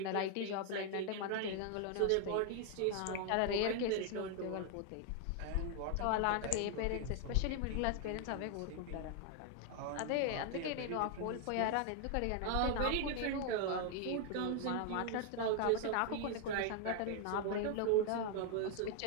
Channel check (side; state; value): both; different; correlation 0.00